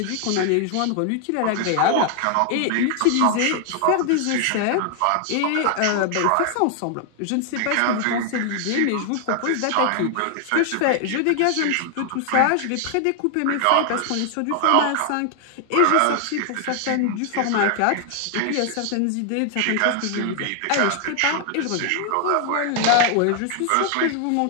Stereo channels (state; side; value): different; both; correlation 0.00